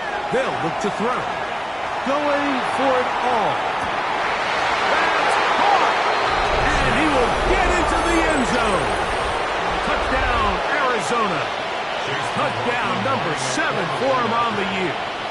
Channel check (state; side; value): identical; both; correlation 1.00